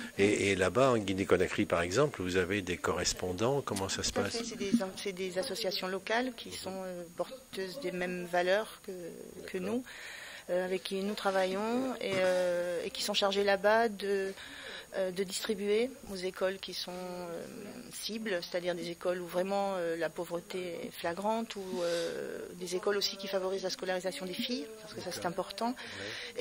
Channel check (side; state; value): both; identical; correlation 1.00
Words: Et là-bas, en Guinée-Conakry, par exemple, vous avez des correspondants, comment ça se passe ? C'est des associations locales qui sont porteuses des mêmes valeurs que nous, avec qui nous travaillons et qui sont chargées là-bas de distribuer aux écoles qui sont cibles, c'est-à-dire des écoles où vraiment la pauvreté est flagrante, ou des écoles aussi qui favorisent la scolarisation des filles, parce que ça c'est important.